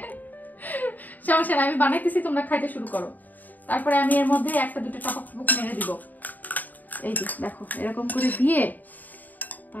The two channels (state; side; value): late; right; 0.084 ms